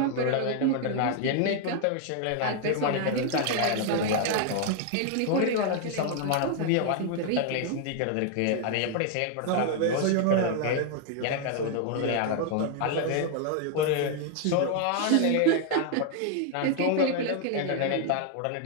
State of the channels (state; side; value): different; both; correlation 0.00